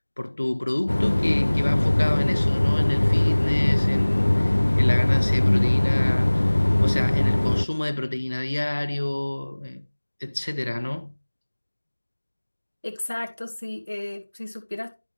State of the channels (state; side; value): inverted; both; correlation -1.00